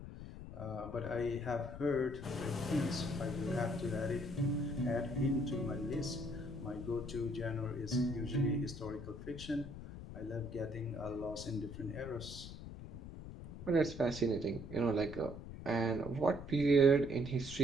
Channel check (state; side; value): noise; left; rumble, 11 dB below the sound